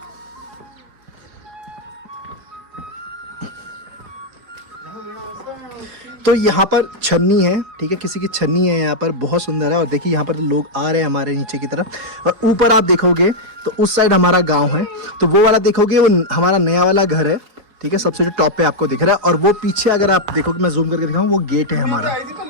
तो यहाँ पर छन्नी है, ठीक है, किसी की छन्नी है यहाँ पर, बहुत सुंदर है। और देखिए यहाँ पर लोग आ रहे हैं हमारे नीचे की तरफ। और ऊपर आप देखोगे तो उस साइड हमारा गांव है, तो वो वाला देखोगे वो हमारा नया वाला घर है, ठीक है, सबसे जो टॉप पे आपको दिख रहा है। और वो पीछे अगर आप देखोगे, मैं जूम करके दिखाऊं, वो गेट है हमारा।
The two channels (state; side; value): late; left; 4.8 ms